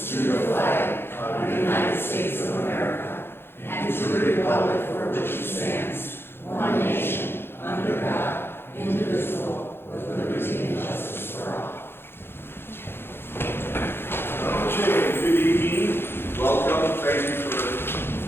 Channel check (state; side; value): late; right; 0.11 ms